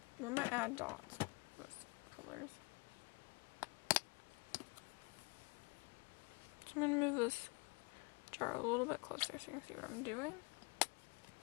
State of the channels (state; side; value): quieter; right; 28.6 dB